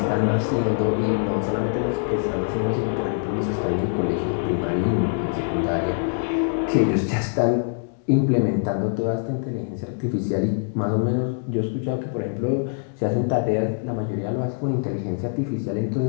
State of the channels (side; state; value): right; silent; digital silence